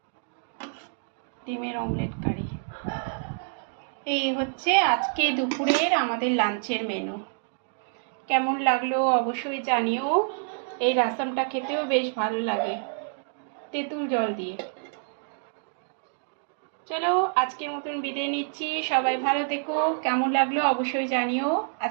ডিমের অমলেট কারি। এই হচ্ছে আজকে দুপুরের আমাদের লাঞ্চের মেনু। কেমন লাগলো অবশ্যই জানিও। এই রাসমটা খেতেও বেশ ভালো লাগে তেঁতুল জল দিয়ে। চলো আজকের মতন বিদায় নিচ্ছি, সবাই ভালো থেকো। কেমন লাগলো অবশ্যই জানিও।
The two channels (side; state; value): left; silent; digital silence